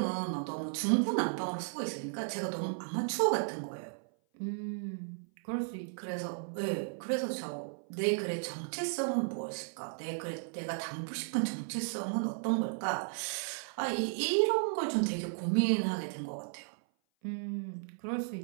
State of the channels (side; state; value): left; silent; 55 dB below the other